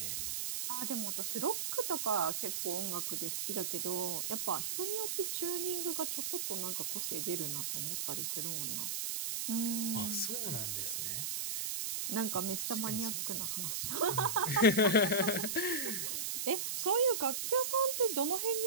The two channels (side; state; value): right; noise; hiss, 1 dB below the sound